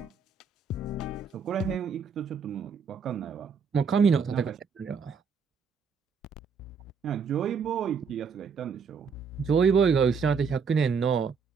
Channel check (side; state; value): left; quieter; 5.7 dB